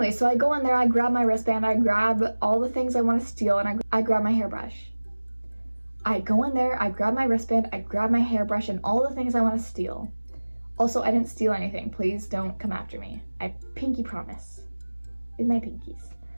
so I go in there, I grab my wristband, I grab all the things I want to steal, and I grab my hairbrush. I go in there, I grab my wristband, I grab my hairbrush, and all the things I want to steal. Also, I didn't steal anything. Please don't come after me. I pinky promise. With my pinkies.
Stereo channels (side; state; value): both; inverted; correlation -1.00